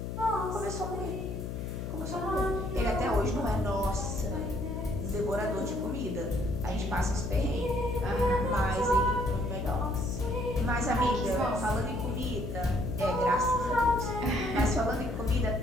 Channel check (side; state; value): left; noise; hum, 5 dB below the sound